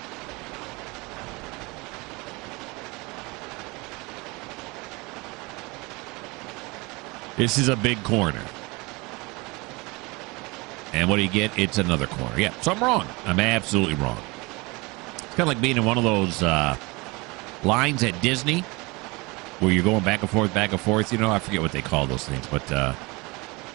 This is a big corner. And what do you get? It's another corner. Yeah, so I'm wrong. I'm absolutely wrong. It's kind of like being in one of those lines at Disney where you're going back and forth, you know. I forget what they call those things, but,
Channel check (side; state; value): left; quieter; 25.4 dB